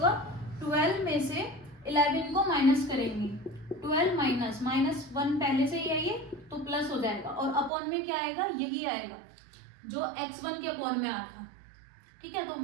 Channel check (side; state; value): left; drops out; at 7.7 s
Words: 12 में से 11 को माइनस करेंगे, 12 माइनस माइनस 1 पहले से ही है ये, तो प्लस हो जाएगा, और अपॉन में क्या आएगा, यही आएगा जो x1 के अपॉन में आया था। ठीक है,